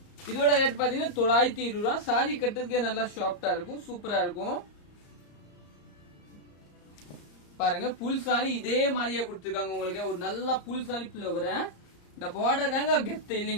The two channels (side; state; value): right; late; 34 ms